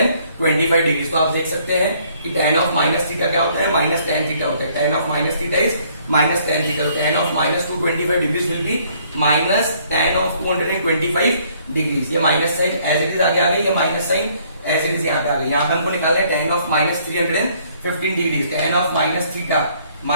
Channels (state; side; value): inverted; both; correlation -0.64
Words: डिग्री। तो आप देख सकते हैं कि tan ऑफ माइनस थीटा क्या होता है, माइनस tan थीटा होता है। tan of minus theta is minus tan theta. तो tan of -225 degree will be minus tan of 225 degree. ये minus sign as it is आगे आ गई, ये minus sign as it is यहाँ पे आ गई। यहाँ पे हमको निकालना है tan of -315 degree. tan of minus theta